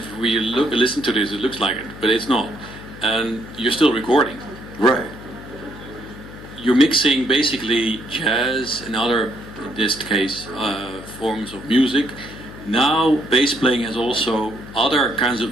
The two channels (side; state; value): left; noise; hum, 15 dB below the sound